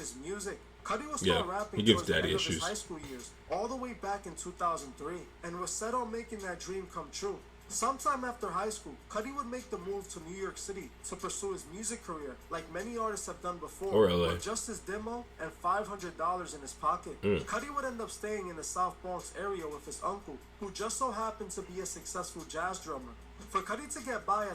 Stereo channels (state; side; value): identical; both; correlation 1.00